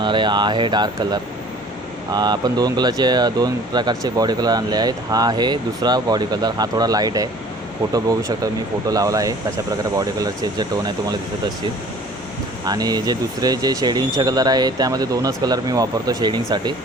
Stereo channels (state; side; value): normal; both; correlation 0.49